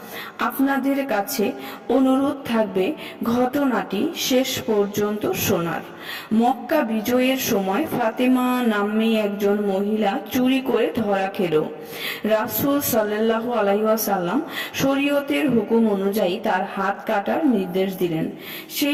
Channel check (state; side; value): identical; both; correlation 1.00